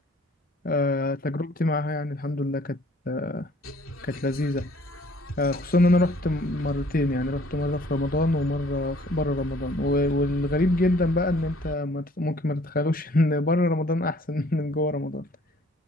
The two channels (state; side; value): normal; both; correlation 0.57